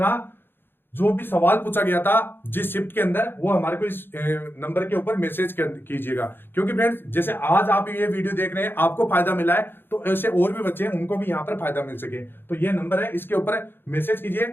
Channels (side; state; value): right; late; 0.10 ms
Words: जो भी सवाल पूछा गया था जिस शिफ्ट के अंदर, वो हमारे को इस नंबर के ऊपर मैसेज कीजिएगा। क्योंकि फ्रेंड्स जैसे आज आप ये वीडियो देख रहे हैं, आपको फायदा मिला है, तो ऐसे और भी बच्चे हैं उनको भी यहाँ पर फायदा मिल सके। तो ये नंबर है, इसके ऊपर मैसेज कीजिए,